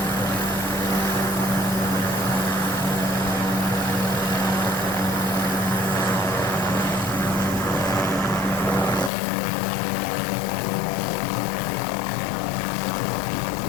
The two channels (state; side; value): drops out; right; at 9.1 s